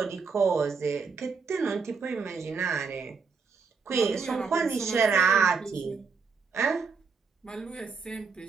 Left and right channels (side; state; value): left; quieter; 5.2 dB